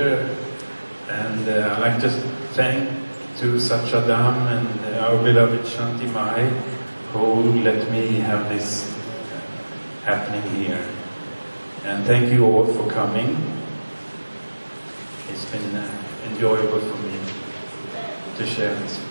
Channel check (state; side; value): inverted; both; correlation -1.00